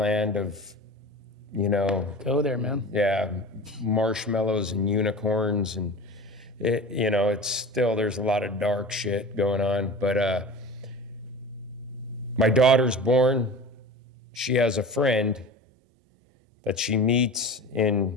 of, Go there, man. yeah, marshmallows and unicorns, and it's still, there's a lot of dark shit going on. But my daughter's born. She has a friend that she meets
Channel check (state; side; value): normal; both; correlation 0.34